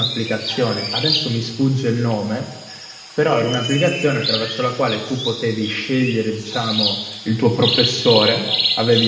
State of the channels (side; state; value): both; identical; correlation 1.00